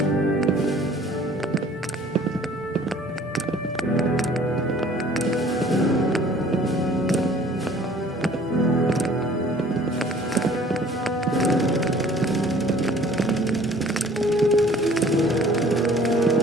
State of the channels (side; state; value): both; normal; correlation 0.53